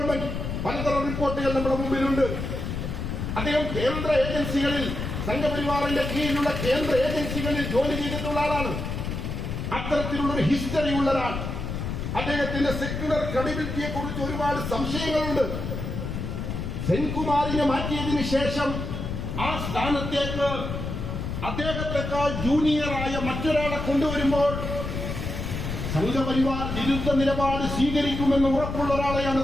പലതരം റിപ്പോർട്ടുകൾ നമ്മുടെ മുമ്പിലുണ്ട്. അദ്ദേഹം കേന്ദ്ര ഏജൻസികളിൽ, സംഘപരിവാറിന്റെ കീഴിലുള്ള കേന്ദ്ര ഏജൻസികളിൽ ജോലി ചെയ്തിട്ടുള്ള ആളാണ്. അത്തരത്തിലുള്ളൊരു ഹിസ്റ്ററി ഉള്ള ഒരാൾ. അദ്ദേഹത്തിന്റെ സെക്യുലർ ക്രെഡിബിലിറ്റിയെ കുറിച്ച് ഒരുപാട് സംശയങ്ങളുണ്ട്. സെൻകുമാറിനെ മാറ്റിയതിനു ശേഷം ആ സ്ഥാനത്തേക്ക് അദ്ദേഹത്തെക്കാൾ ജൂനിയറായ മറ്റൊരാളെ കൊണ്ടുവരുമ്പോൾ സംഘപരിവാർ വിരുദ്ധ നിലപാട് സ്വീകരിക്കുമെന്ന് ഉറപ്പുള്ള ഒരാളെയാണ്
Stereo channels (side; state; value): left; noise; rumble, 4 dB below the sound